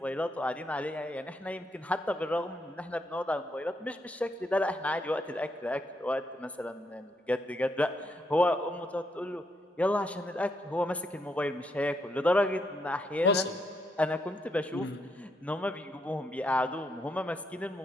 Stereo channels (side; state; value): both; normal; correlation 0.77